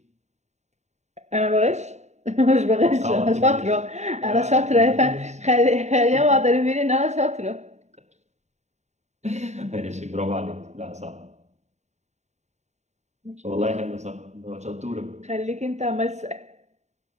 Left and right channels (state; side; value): late; left; 0.33 ms